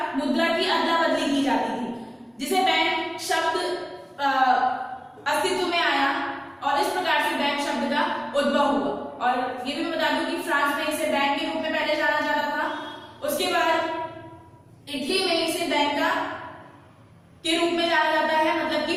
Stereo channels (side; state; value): both; identical; correlation 1.00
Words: मुद्रा की अदला बदली की जाती थी, जिसे बैंक शब्द अस्तित्व में आया और इस प्रकार से बैंक शब्द का उद्भव हुआ। और ये भी मैं बता दूं कि फ्रांस में इसे बैंक के रूप में पहले जाना जाता था। उसके बाद इटली में इसे बैंक का के रूप में जाना जाता है, मतलब कि